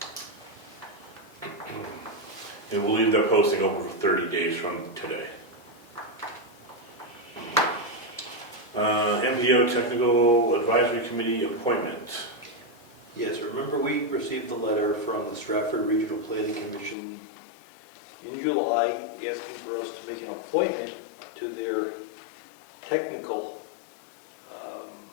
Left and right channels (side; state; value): right; drops out; at 16.9 s